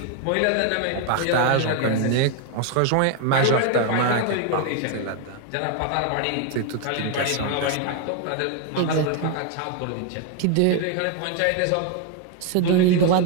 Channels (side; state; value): both; different; correlation 0.01